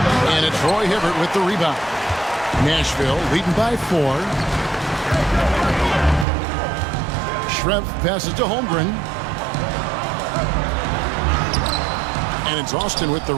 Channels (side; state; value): left; drops out; at 6.2 s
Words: And it's Roy Hibbert with the rebound. Nashville leading by 4. Schrempf passes to Holmgren. And it's Austin with the